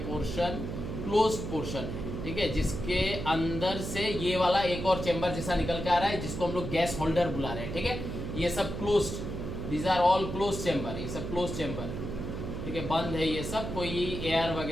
पोर्शन क्लोज्ड पोर्शन है, ठीक है, जिसके अंदर से ये वाला एक और चेंबर जैसा निकल के आ रहा है, जिसको हम लोग गैस होल्डर बुला रहे हैं, ठीक है। ये सब closed, these are all close chamber, ये सब क्लोज चेंबर, ठीक है, बंद है ये सब, कोई एयर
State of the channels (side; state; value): right; noise; hum, 6 dB below the sound